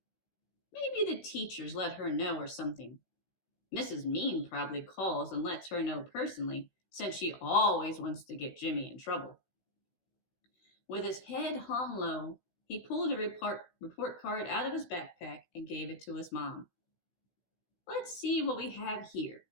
Maybe the teachers let her know or something. Mrs. Mean probably calls and lets her know personally, since she always wants to get Jimmy in trouble. With his head hung low, he pulled a report card out of his backpack and gave it to his mom. "Let's see what we have here.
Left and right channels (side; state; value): right; late; 16 ms